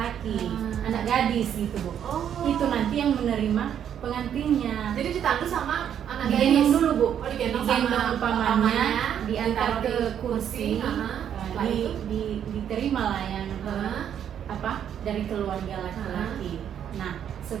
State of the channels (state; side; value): quieter; left; 9.3 dB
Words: anak gadis gitu Bu. Oh. Itu nanti yang menerima pengantinnya. Jadi ditandu sama anak Digendong gadis dulu Bu, Oh, digendong digendong sama pamannya, diantar ditaruh ke di kursi, Setelah itu? diterima lah yang Hah? apa dari keluarga laki-laki. Nah